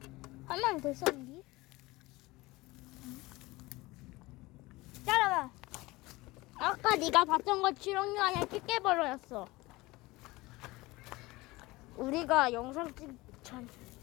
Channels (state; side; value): quieter; right; 21.0 dB